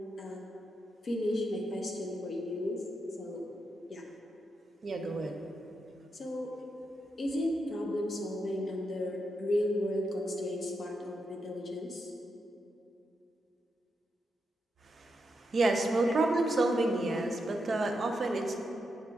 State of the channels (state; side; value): normal; both; correlation 0.84